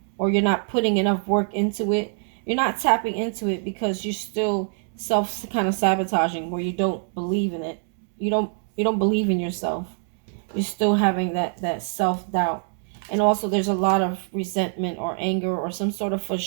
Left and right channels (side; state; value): left; silent; 58 dB below the other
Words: Or you're not putting enough work into it. You're not tapping into it because you're still self kind of sabotaging, where you don't believe in it. You don't believe in yourself. You're still having that self-doubt. And also there's a lot of resentment or anger or some sort of